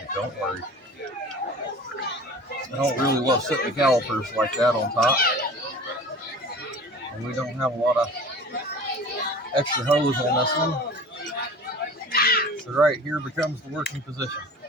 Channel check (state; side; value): normal; both; correlation 0.41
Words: it, don't worry. I don't really love sitting the calipers like that on top. And we don't have a lot of extra hose on this one. So right here becomes the working position.